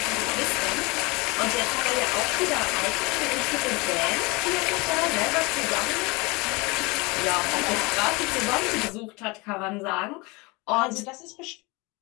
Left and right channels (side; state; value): right; quieter; 25.9 dB